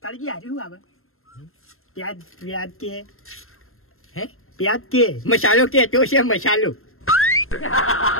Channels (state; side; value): late; right; 0.62 ms